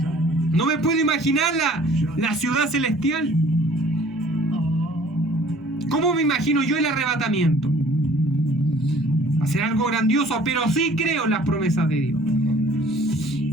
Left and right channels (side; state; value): both; normal; correlation 0.53